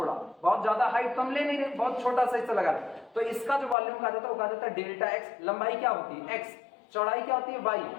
बहुत ज्यादा हाइट तो हम ले नहीं रहे, बहुत छोटा सा हिस्सा लगा रहे। तो इसका जो वॉल्यूम कहा जाता है वो कहा जाता है डेल्टा x। लंबाई क्या होती है x, चौड़ाई क्या होती है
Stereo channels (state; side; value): drops out; right; at 3.8 s